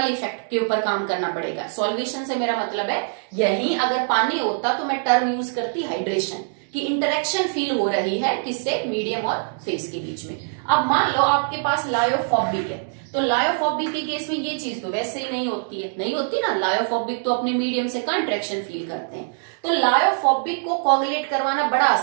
इफेक्ट के ऊपर काम करना पड़ेगा। सॉल्वेशन से मेरा मतलब है, यही अगर पानी होता तो मैं टर्म यूज करती हाइड्रेशन, कि इंटरेक्शन फील हो रही है किससे, मीडियम और फेस के बीच में। अब मान लो आपके पास लायोफोबिक है, तो लायोफोबिक के केस में ये चीज तो वैसे ही नहीं होती है, नहीं होती ना। लायोफोबिक तो अपने मीडियम से कहाँ अट्रैक्शन फील करते हैं। तो लायोफोबिक को कोगुलेट करवाना बड़ा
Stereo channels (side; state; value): left; silent; digital silence